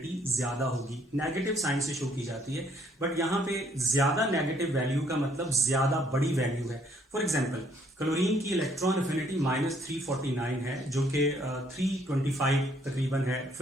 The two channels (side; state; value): both; normal; correlation 0.66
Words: ज्यादा होगी। नेगेटिव साइन से शो की जाती है, बट यहाँ पे ज्यादा नेगेटिव वैल्यू का मतलब ज्यादा बड़ी वैल्यू है। फॉर एग्जांपल क्लोरीन की इलेक्ट्रॉन अफिनिटी -349 है, जो कि 325 तकरीबन है